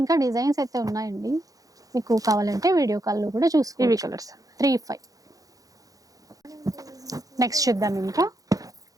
డిజైన్స్ అయితే ఉన్నాయండి, మీకు కావాలంటే వీడియో కాల్లో కూడా చూసుకోండి. ఇవి కలర్స్ 35. నెక్స్ట్ చూద్దాం ఇంకా.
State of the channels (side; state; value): left; late; 0.17 ms